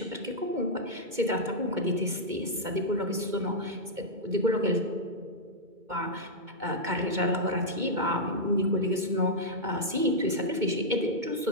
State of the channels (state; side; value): late; left; 2.2 ms